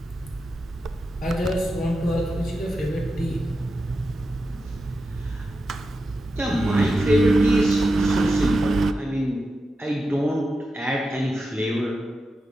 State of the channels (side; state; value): both; normal; correlation 0.90